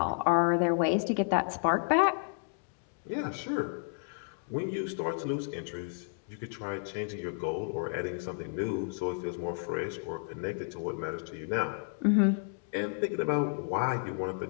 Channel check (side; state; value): right; silent; digital silence